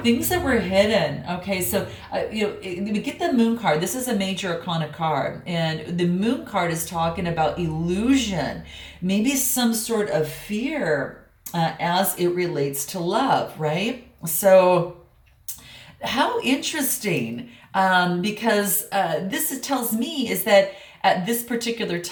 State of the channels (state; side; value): identical; both; correlation 1.00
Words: Things that were hidden, okay. So, we get the Moon card. This is a major arcana card. And the Moon card is talking about illusion, maybe some sort of fear as it relates to love, right? So how interesting, because this tells me is that at this particular